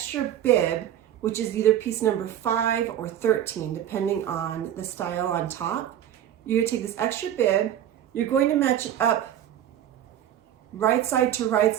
bib, which is either piece number 5 or 13, depending on the style on top. You're going to take this extra bib, you're going to match it up right side to right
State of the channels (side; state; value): left; quieter; 10.9 dB